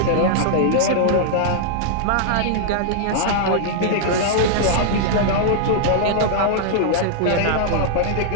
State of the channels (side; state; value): both; different; correlation -0.01